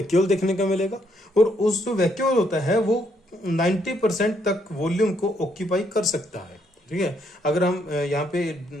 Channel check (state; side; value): normal; both; correlation 0.72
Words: देखने को मिलेगा। और उस जो वैक्यूल होता है वो 90% तक वॉल्यूम को ऑक्यूपाई कर सकता है, ठीक है। अगर हम यहाँ पे